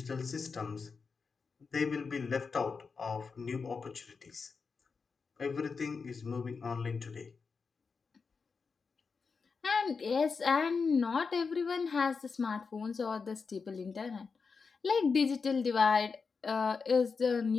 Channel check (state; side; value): quieter; right; 5.0 dB